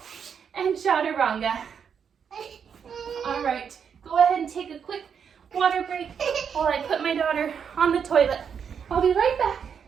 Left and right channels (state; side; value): quieter; left; 7.2 dB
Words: And chaturanga. All right. Go ahead and take a quick water break while I put my daughter on the toilet. I'll be right back.